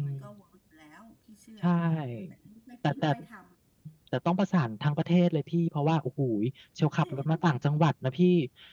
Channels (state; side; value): identical; both; correlation 1.00